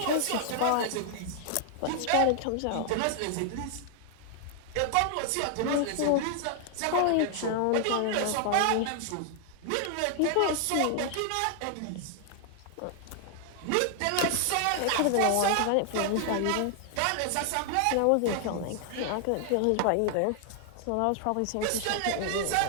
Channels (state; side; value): different; both; correlation 0.00